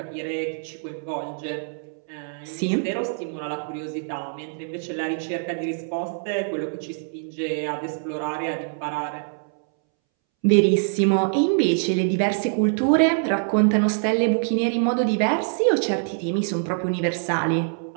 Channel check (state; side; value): silent; left; 62 dB below the other